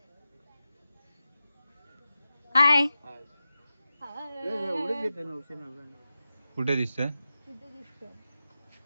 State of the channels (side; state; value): both; inverted; correlation -0.93